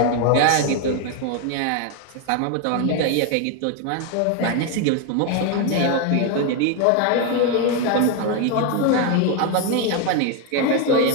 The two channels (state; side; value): different; both; correlation 0.01